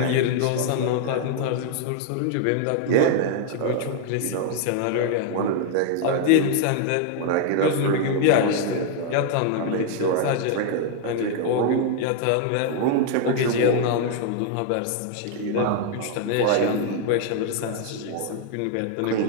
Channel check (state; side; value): different; both; correlation 0.00